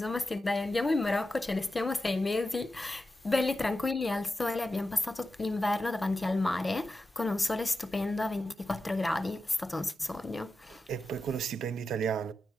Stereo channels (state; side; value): normal; both; correlation 0.91